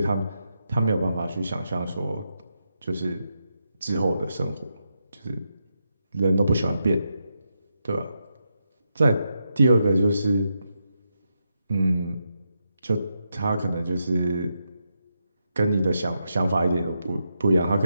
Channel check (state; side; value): inverted; both; correlation -0.85